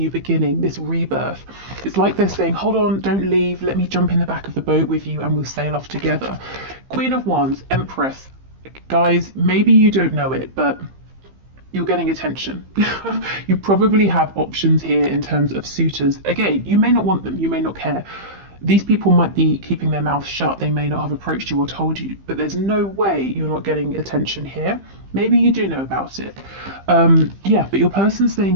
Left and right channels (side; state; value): left; late; 15 ms